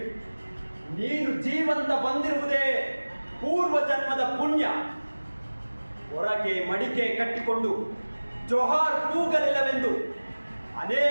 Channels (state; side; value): inverted; both; correlation -1.00